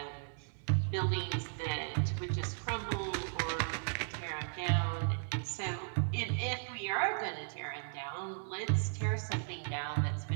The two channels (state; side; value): silent; left; 54 dB below the other